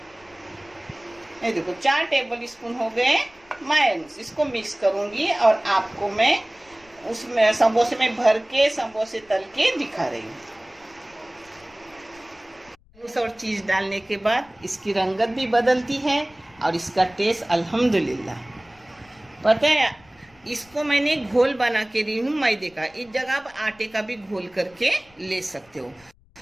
ये देखो 4 टेबल स्पून हो गए मायोनीज। इसको मिक्स करूंगी और आपको मैं उसमें समोसे में भर के समोसे तल के दिखा रही हूँ। और चीज डालने के बाद इसकी रंगत भी बदलती है और इसका टेस्ट अल्हम्दुलिल्लाह। पता है, इसको मैंने घोल बना के दी हूँ मैदे का। इस जगह आप आटे का भी घोल करके ले सकते हो।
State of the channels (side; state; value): left; noise; rumble, 29 dB below the sound